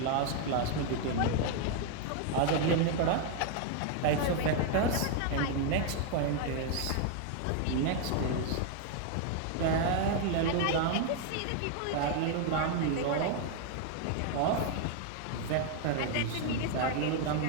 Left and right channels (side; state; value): both; different; correlation 0.00